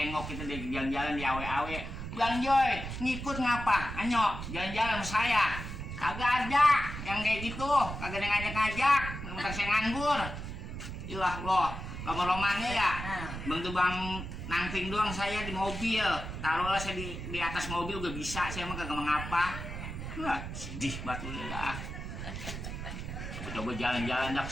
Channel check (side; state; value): right; noise; rumble, 7 dB below the sound